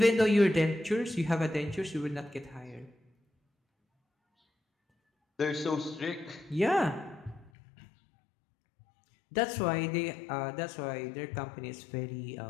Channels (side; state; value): right; drops out; at 7.5 s